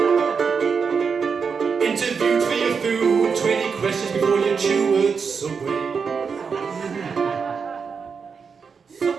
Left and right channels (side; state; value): left; quieter; 5.8 dB